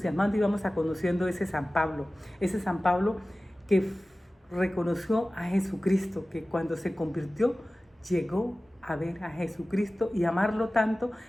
y vamos a conociendo ese San Pablo que reconoció a Jesucristo, que cuando se convirtió llegó a ver a Jesucristo y amarlo tanto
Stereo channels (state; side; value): normal; both; correlation 0.97